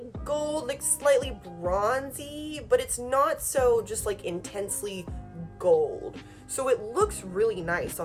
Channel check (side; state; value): both; identical; correlation 1.00